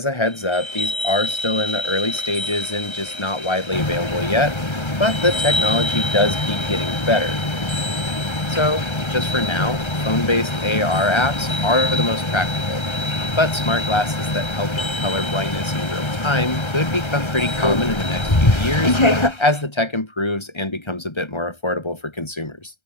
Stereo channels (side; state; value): right; late; 1.3 ms